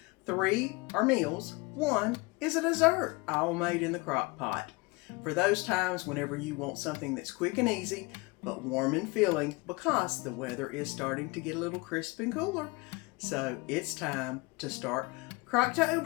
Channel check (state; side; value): quieter; right; 25.4 dB